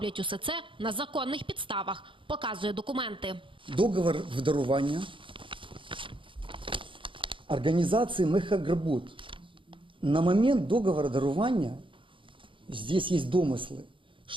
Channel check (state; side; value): late; left; 0.25 ms